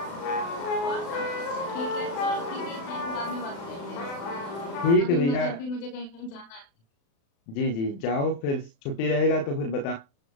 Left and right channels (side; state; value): right; late; 36 ms